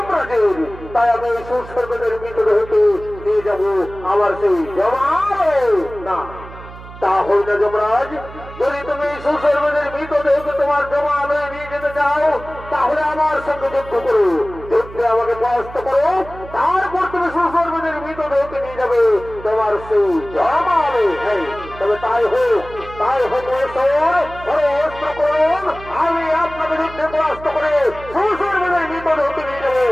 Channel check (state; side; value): noise; right; hum, 16 dB below the sound